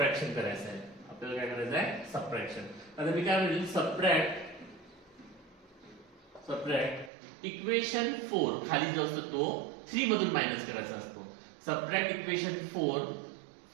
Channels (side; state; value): left; drops out; at 7.1 s